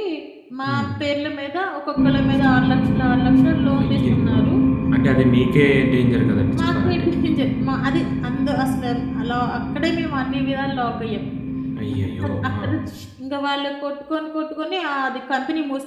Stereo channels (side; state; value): both; identical; correlation 1.00